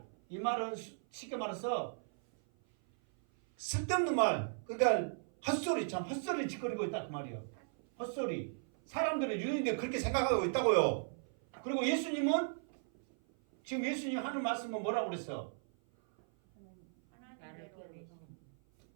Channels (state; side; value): silent; left; 53 dB below the other